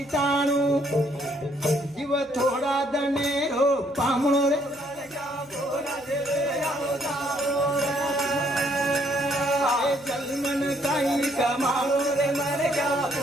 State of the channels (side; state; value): right; noise; hum, 30 dB below the sound